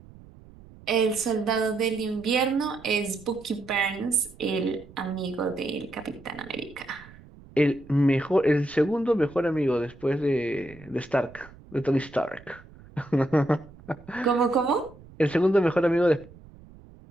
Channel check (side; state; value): right; noise; rumble, 21 dB below the sound